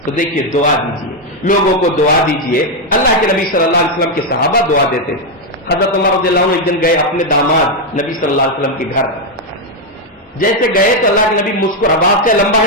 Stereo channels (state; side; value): normal; both; correlation 0.03